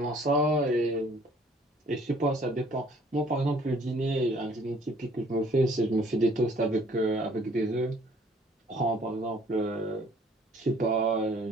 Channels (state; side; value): normal; both; correlation 0.58